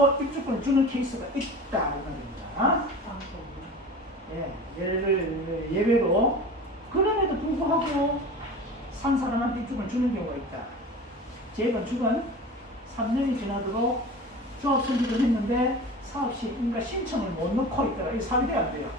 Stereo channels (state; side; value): normal; both; correlation 0.36